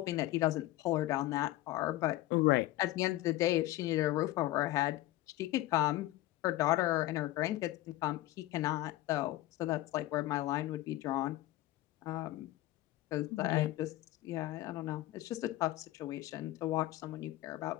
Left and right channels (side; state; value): right; quieter; 16.2 dB